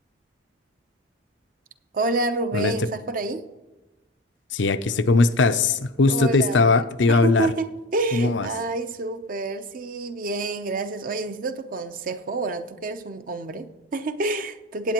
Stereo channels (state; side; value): normal; both; correlation 0.29